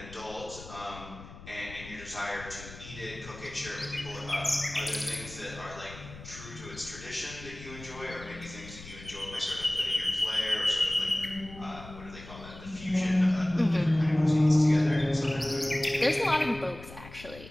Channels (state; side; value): noise; left; rumble, 15 dB below the sound